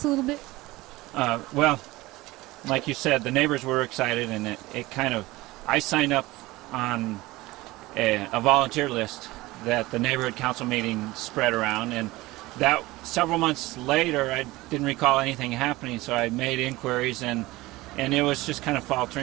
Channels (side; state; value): left; quieter; 19.7 dB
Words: a little bit? Well, like you said, the neighbors were excited, and it kind of, I signed up on a volunteer list that the neighborhood council meeting spread around, and that several months later, I didn't recall anything happening, so I made inquiries, and it was just kind of